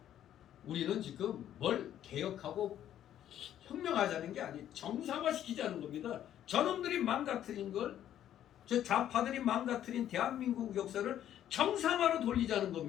우리는 지금 뭘 개혁하고 혁명하자는 게 아니에요. 정상화시키자는 겁니다. 저놈들이 망가뜨린 걸, 저 좌파들이 망가뜨린 대한민국 역사를 정상화로 돌리자는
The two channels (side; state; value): right; quieter; 11.1 dB